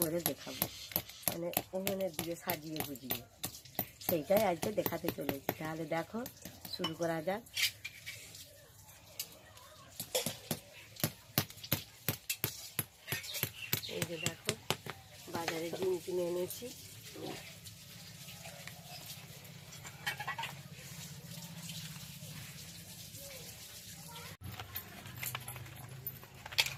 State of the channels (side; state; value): both; identical; correlation 1.00